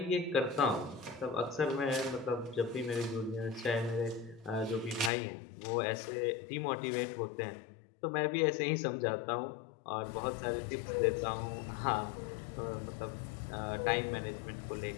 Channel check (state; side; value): drops out; right; at 5.1 s